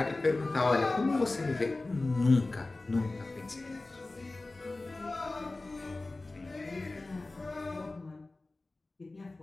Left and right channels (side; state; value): right; quieter; 3.1 dB